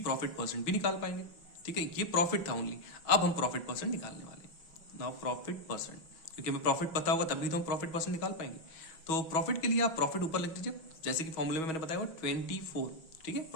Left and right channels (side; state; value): right; late; 6.2 ms